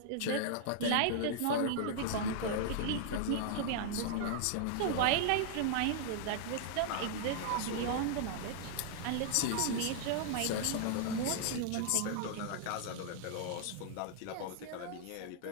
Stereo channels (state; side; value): different; both; correlation -0.01